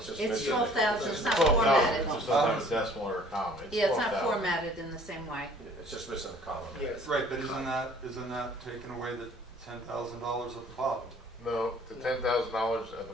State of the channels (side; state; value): both; normal; correlation 0.54